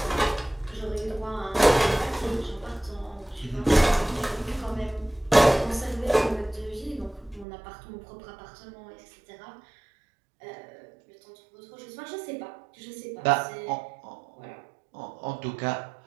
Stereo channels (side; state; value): left; drops out; at 7.5 s